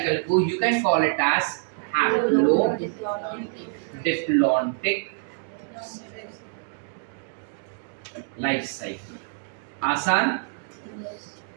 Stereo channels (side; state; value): left; silent; digital silence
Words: को you can call it as haplodiplontic life cycle. आसान?